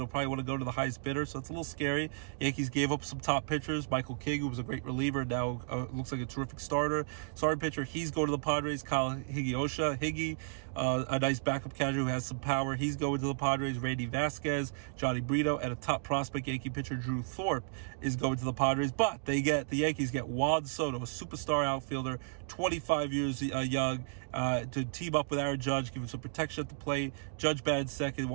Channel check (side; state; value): left; silent; digital silence